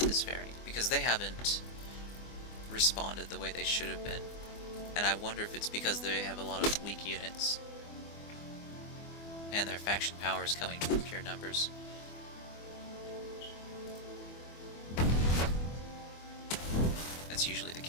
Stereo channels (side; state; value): right; late; 24 ms